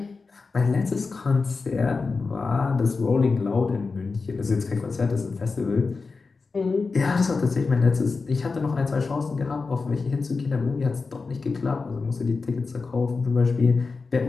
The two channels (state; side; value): quieter; right; 4.3 dB